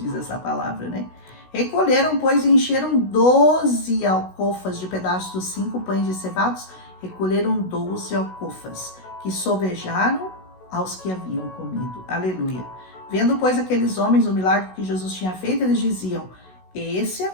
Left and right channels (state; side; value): late; right; 16 ms